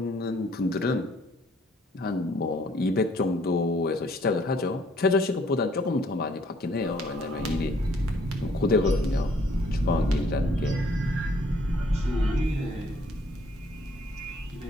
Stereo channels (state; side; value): normal; both; correlation 0.63